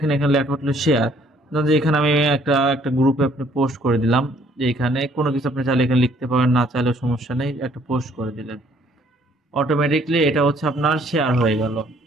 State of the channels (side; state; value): both; normal; correlation 0.62